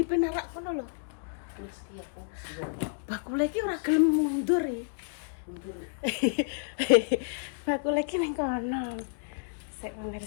kono lho. Wis iki aku. Bakul iki ora gelem mundur ya. Aku lagi ning kono. Sik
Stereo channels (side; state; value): right; silent; digital silence